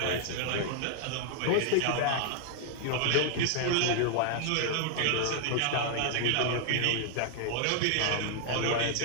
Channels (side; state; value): both; different; correlation 0.00